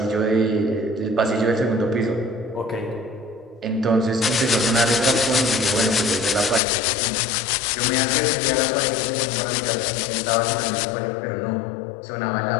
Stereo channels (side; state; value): right; drops out; at 6.6 s